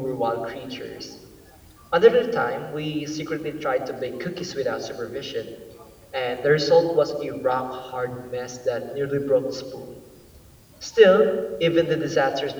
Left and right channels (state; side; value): identical; both; correlation 1.00